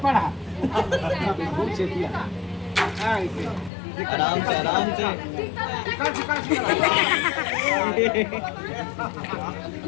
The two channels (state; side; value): drops out; right; at 3.7 s